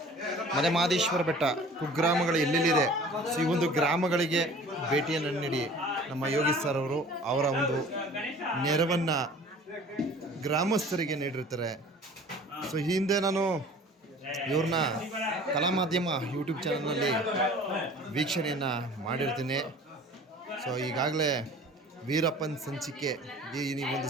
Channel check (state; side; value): normal; both; correlation 0.46